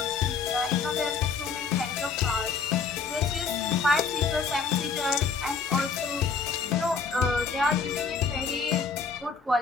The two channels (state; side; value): quieter; right; 5.3 dB